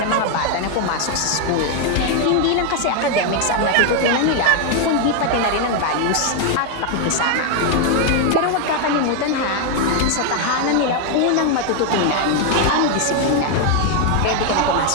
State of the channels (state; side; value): different; both; correlation 0.01